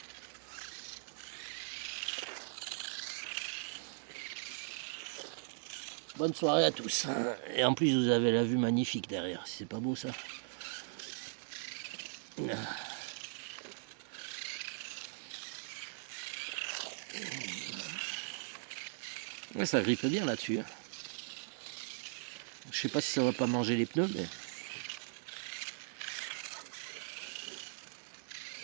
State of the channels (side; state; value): left; silent; digital silence